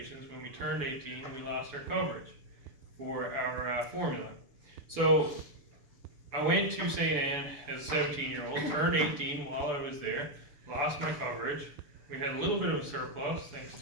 when we turned 18, we lost our coverage for our formula. So I went to St. Anne as a 17-year-old, turned 18 while I was there, lost my coverage. We had a little bit of a surplus thanks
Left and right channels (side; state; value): left; late; 6.9 ms